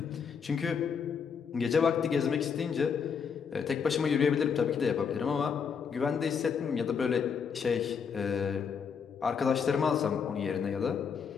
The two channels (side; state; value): right; quieter; 6.5 dB